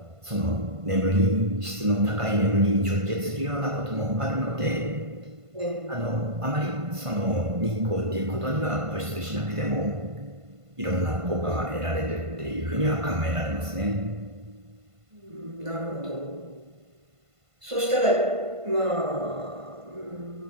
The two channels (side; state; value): left; late; 1.5 ms